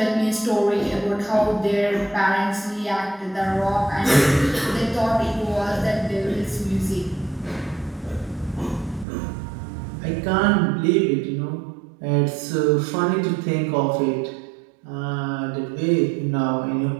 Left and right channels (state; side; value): drops out; left; at 9.1 s